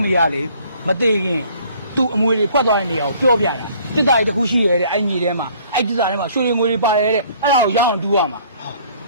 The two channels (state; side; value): inverted; both; correlation -0.57